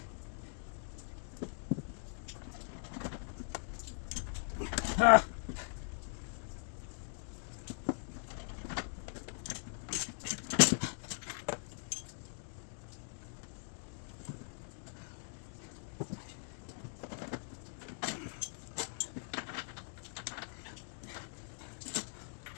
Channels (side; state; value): right; silent; digital silence